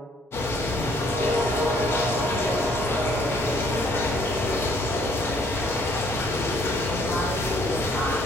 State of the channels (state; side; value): normal; both; correlation 0.63